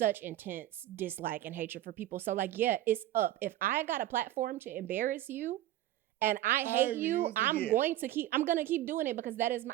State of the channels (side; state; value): left; quieter; 14.0 dB